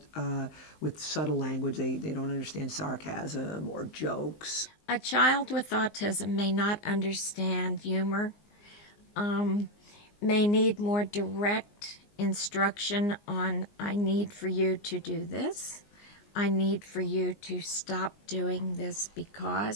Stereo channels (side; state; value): right; late; 19 ms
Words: with subtle language. They don't understand sarcasm or jokes. A child with autism may not understand humor, may need more direct instruction on, I need for you to do this. I need for you to stop doing this